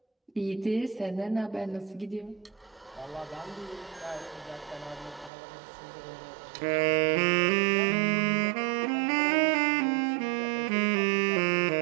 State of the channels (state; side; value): drops out; left; at 5.3 s